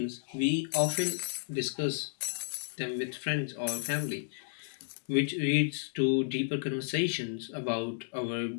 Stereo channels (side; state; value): right; silent; digital silence